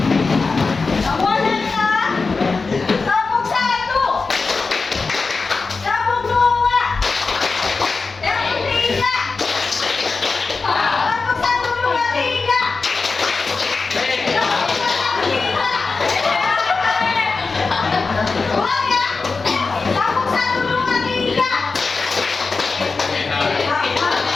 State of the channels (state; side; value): quieter; right; 4.2 dB